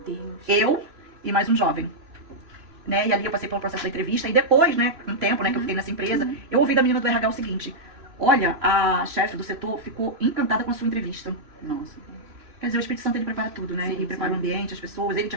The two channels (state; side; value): late; left; 3.0 ms